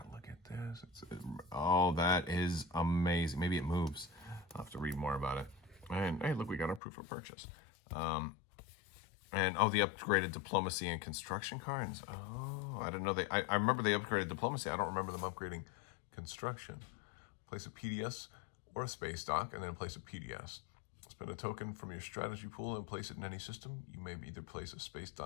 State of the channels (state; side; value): drops out; right; at 6.8 s